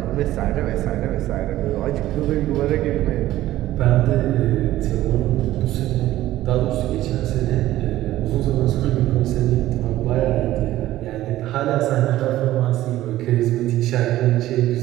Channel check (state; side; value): quieter; left; 14.8 dB